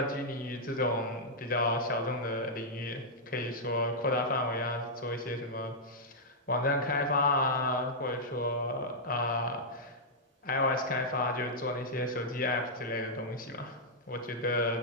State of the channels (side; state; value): both; normal; correlation -0.08